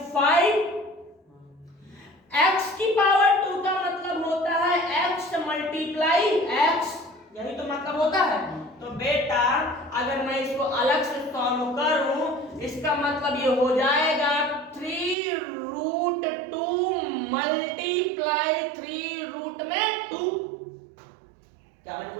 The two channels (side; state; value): left; drops out; at 15.2 s